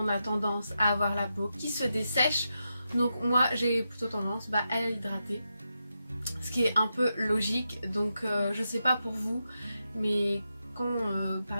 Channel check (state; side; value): inverted; both; correlation -0.87